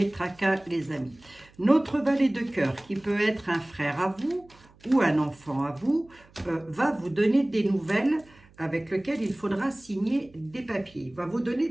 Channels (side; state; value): right; noise; hum, 27 dB below the sound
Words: tracas, les amis. Notre valet de cœur, qui peut être un frère à vous ou un enfant à vous, va vous donner des nouvelles avec lesquelles il faudra signer des papiers. Il va vous donner